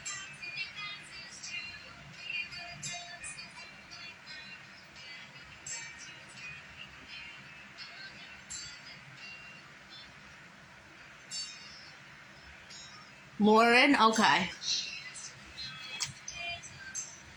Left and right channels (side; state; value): both; identical; correlation 1.00